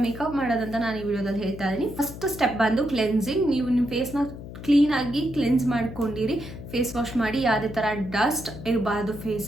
ಮೇಕಪ್ ಮಾಡೋದಂತ ನಾನು ಈ ವಿಡಿಯೋದಲ್ಲಿ ಹೇಳ್ತಾ ಇದ್ದೀನಿ. ಫಸ್ಟ್ ಸ್ಟೆಪ್ ಬಂದು ಕ್ಲೆನ್ಸಿಂಗ್. ನೀವು ನಿಮ್ಮ ಫೇಸ್ನ ಕ್ಲೀನಾಗಿ ಕ್ಲೆನ್ಸ್ ಮಾಡ್ಕೊಂಡಿರಿ, ಫೇಸ್ ವಾಶ್ ಮಾಡಿ, ಯಾವುದೇ ಥರ ಡಸ್ಟ್ ಇರಬಾರ್ದು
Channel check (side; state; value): left; noise; hum, 12 dB below the sound